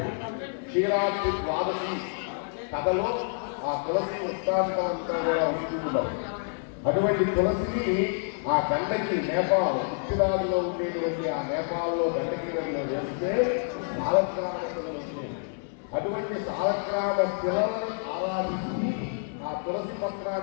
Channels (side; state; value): right; silent; 59 dB below the other